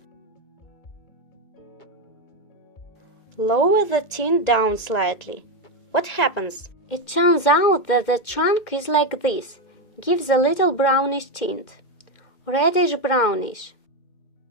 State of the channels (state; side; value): late; right; 2.2 ms